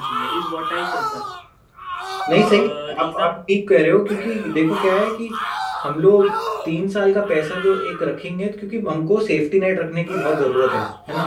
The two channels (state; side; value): identical; both; correlation 1.00